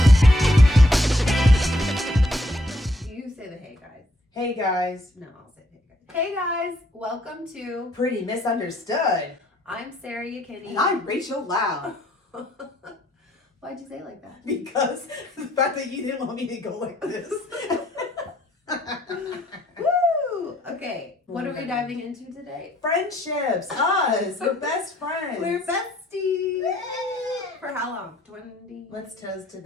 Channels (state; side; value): normal; both; correlation 0.67